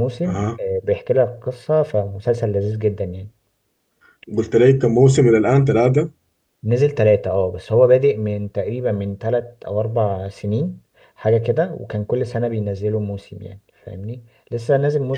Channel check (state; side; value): identical; both; correlation 1.00